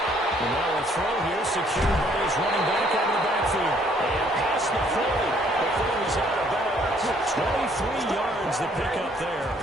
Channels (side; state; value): both; normal; correlation 0.64